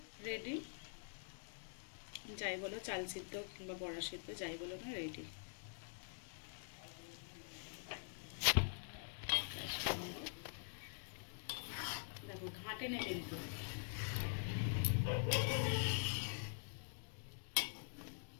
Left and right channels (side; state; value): right; silent; digital silence